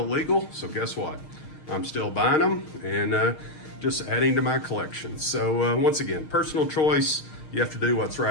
legal, so guess what? I'm still buying them and just adding to my collection. So once again, personal choice. You have to do what's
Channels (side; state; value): right; late; 6.5 ms